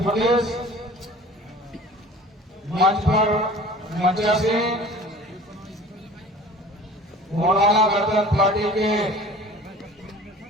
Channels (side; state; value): both; normal; correlation 0.44